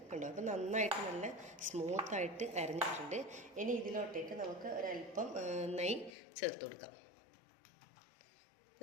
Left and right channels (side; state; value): right; drops out; at 6.2 s